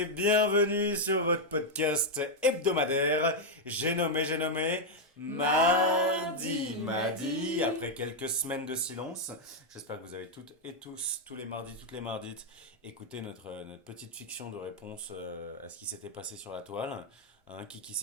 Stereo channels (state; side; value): normal; both; correlation -0.01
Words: bienvenue sur votre podcast hebdomadaire. J'ai nommé Mardi. Après quelques semaines de silence, j'espère que vous avez toutes et tous, toutes les mardites, écouté notre petite fiction de réponse à ce qui s'était passé sur la toile. Qui